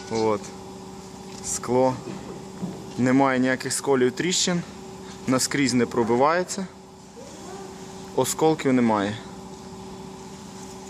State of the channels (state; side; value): identical; both; correlation 1.00